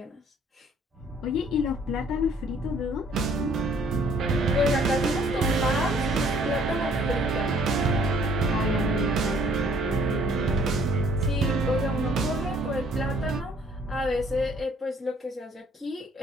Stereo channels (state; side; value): normal; both; correlation 0.59